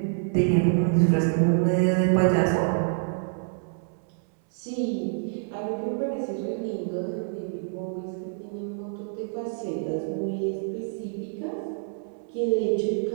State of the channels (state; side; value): silent; left; 60 dB below the other